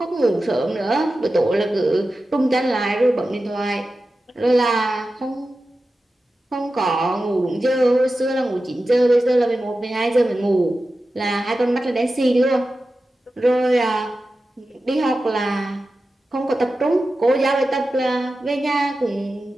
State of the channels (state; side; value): normal; both; correlation 0.93